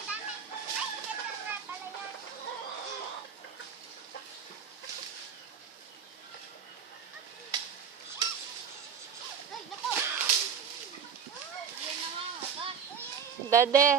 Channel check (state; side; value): quieter; left; 7.0 dB